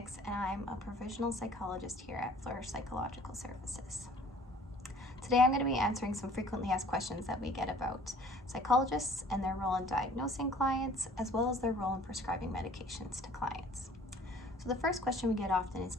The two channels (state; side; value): normal; both; correlation 0.52